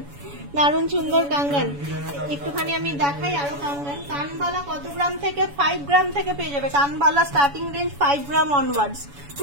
দারুণ সুন্দর কাঙ্গান। একটুখানি আমি দেখাই আরো কাঙ্গান। কানবালা কত গ্রাম থেকে? 5 গ্রাম থেকে পেয়ে যাবে। কানবালা স্টার্টিং রেঞ্জ 5 গ্রাম অনওয়ার্ডস,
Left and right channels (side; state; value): left; late; 7.1 ms